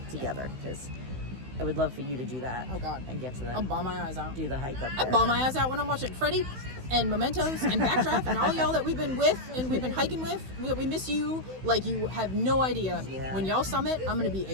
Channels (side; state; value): left; late; 16 ms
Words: together, because I would love for you to do that. Oh, God. And get to I'll bawl my eyes out. do the hike up I there. bawl my eyes out when I'm watching Freddie and Mementos and Backdraft and all y'all that we've been with and we've been hiking with. We miss you like you have no idea. Yeah. When y'all summit, I'm gonna be